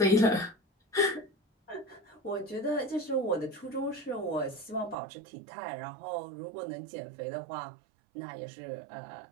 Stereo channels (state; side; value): drops out; left; at 5.0 s